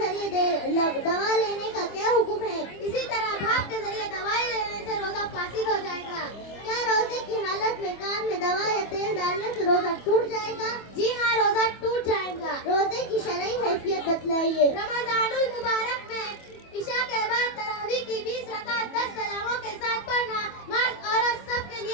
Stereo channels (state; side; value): late; right; 25 ms